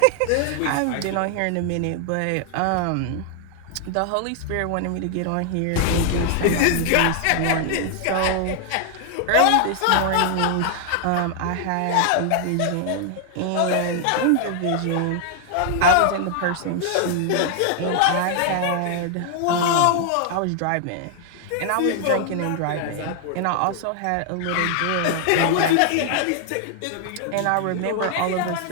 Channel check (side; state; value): both; different; correlation 0.00